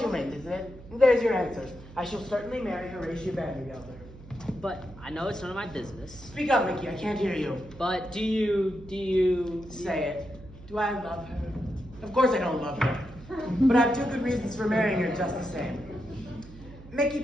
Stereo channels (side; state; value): right; noise; hum, 18 dB below the sound